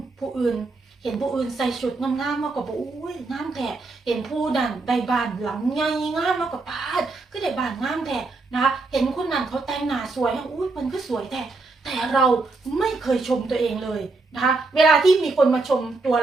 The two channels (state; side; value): quieter; left; 3.6 dB